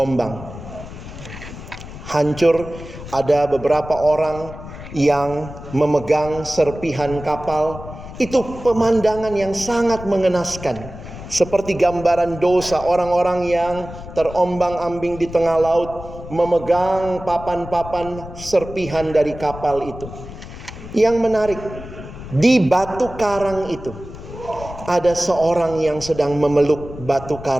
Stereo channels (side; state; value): left; noise; rumble, 13 dB below the sound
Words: Hancur, ada beberapa orang yang memegang serpihan kapal. Itu pemandangan yang sangat mengenaskan. Seperti gambaran dosa orang-orang yang terombang-ambing di tengah laut, memegang papan-papan serpihan dari kapal itu. Yang menarik, di batu karang itu ada seorang yang sedang memeluk batu